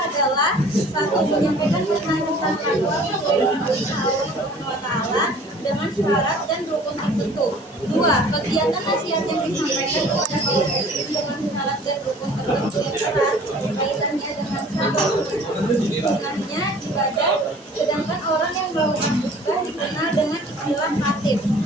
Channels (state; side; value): normal; both; correlation 0.50